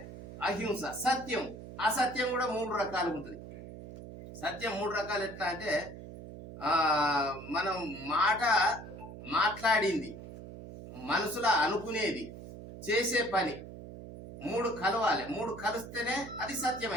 అహింస, సత్యం. అసత్యం కూడా 3 రకాలు ఉంటుంది. సత్యం 3 రకాలు ఎట్లా అంటే మనం మాట్లాడింది, మనసులో అనుకునేది, చేసే పని 3 కలవాలి. 3 కలిస్తేనే అది సత్యం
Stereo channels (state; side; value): noise; right; hum, 13 dB below the sound